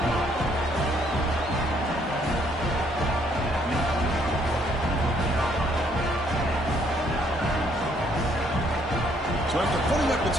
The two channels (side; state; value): both; normal; correlation 0.67